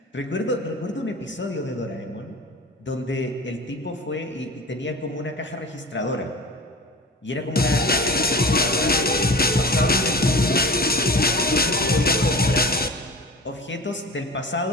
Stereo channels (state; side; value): normal; both; correlation 0.35